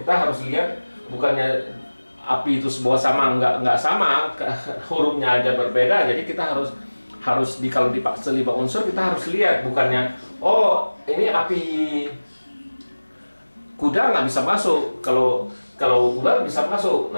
harus lihat, bukannya api itu sebuah sama, nggak sama, hurufnya aja berbeda. Jadi kita harus kalau dipaksa 5 unsur kita harus lihat, bukannya oh ini api kuda nggak bisa masuk, kalau ular bisa masuk.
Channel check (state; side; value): inverted; both; correlation -1.00